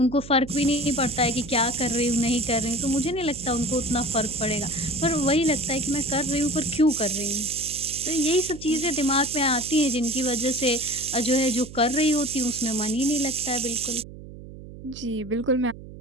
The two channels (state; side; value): noise; right; hum, 15 dB below the sound